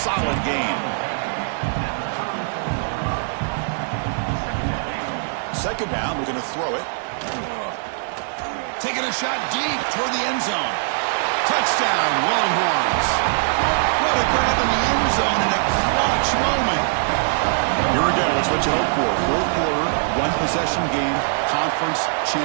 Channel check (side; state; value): left; silent; 59 dB below the other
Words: gain. 2nd down, we're going to throw it. Taking a shot deep toward the end zone. Touchdown, Longhorns. What a grab in the end zone in a clutch moment. Here again, that's what you hope for. 4th quarter, 1-possession game, conference